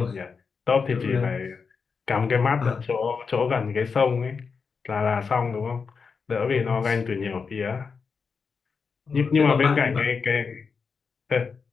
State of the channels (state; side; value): quieter; right; 5.4 dB